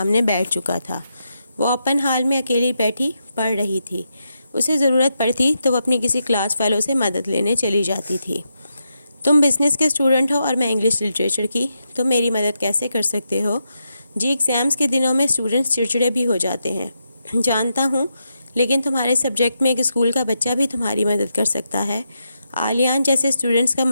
بیٹھ چکا تھا۔ وہ اوپن ہال میں اکیلی بیٹھی پڑھ رہی تھی۔ اسے ضرورت پڑتی تو وہ اپنی کسی کلاس فیلو سے مدد لینے چلی جاتی تھی۔ تم بزنس کے اسٹوڈنٹ ہو اور میں انگلش لٹریچر کی، تم میری مدد کیسے کر سکتے ہو؟ جی، ایگزامس کے دنوں میں اسٹوڈنٹس چڑچڑے بھی ہو جاتے ہیں، جانتا ہوں، لیکن تمہارے سبجیکٹ میں ایک اسکول کا بچہ بھی تمہاری مدد کر سکتا ہے۔ آلیان جیسے اسٹوڈنٹس کا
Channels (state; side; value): inverted; both; correlation -0.84